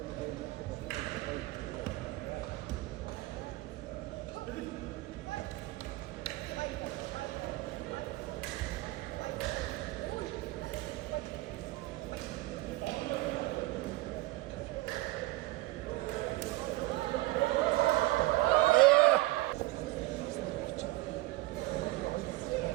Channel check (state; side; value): quieter; left; 19.3 dB